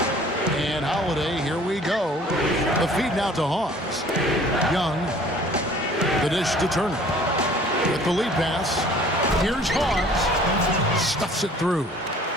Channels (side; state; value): both; normal; correlation 0.52